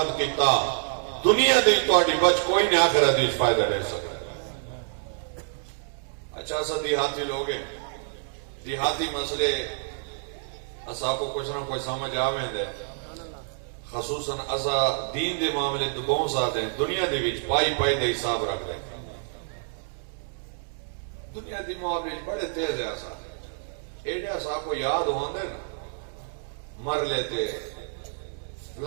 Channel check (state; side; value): silent; left; digital silence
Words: کیتا، دنیا دے تواڈی بچ کوئی نہیں، آخرت وچ فائدہ لے سکتا۔ اچھا سا دیہاتی لوگ ہیں، دیہاتی مسئلے اسا کو کچھ نہ کوئی سمجھ آویں دے، خصوصاً اسا دین دے معاملے تو بہت ساتھ ہیں، دنیا دے وچ پائی دے حساب رکھ لیں، دنیا دی معاملے بڑے تیز ہے اسا، ایڈے اسا کو یاد ہوندے نا، مر لیتے